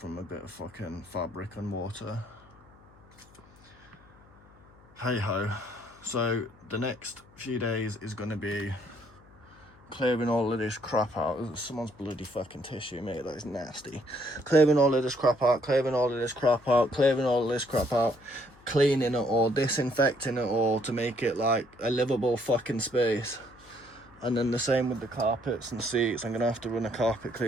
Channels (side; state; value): left; noise; hum, 26 dB below the sound